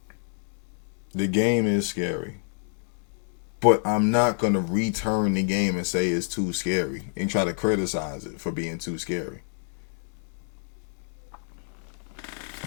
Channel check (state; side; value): silent; right; 60 dB below the other